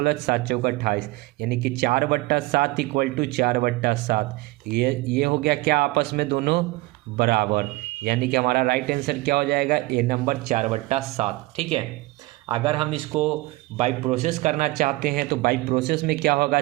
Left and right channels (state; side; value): quieter; left; 20.8 dB